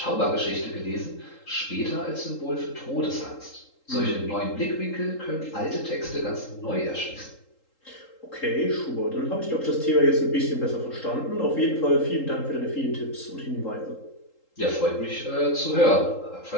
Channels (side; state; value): right; late; 3.8 ms